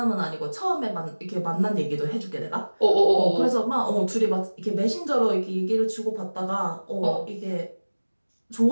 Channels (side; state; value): both; inverted; correlation -1.00